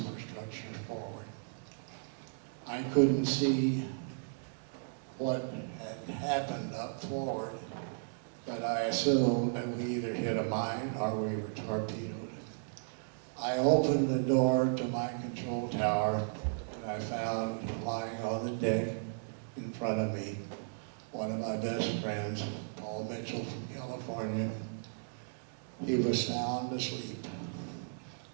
forward. I couldn't see what had happened up forward, but I assumed that we either hit a mine or we were torpedoed. I opened the door to my control tower and I found lying on the deck in front of me one of my best friends, Paul Mitchell from California. He was sound asleep.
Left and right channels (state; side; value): silent; left; digital silence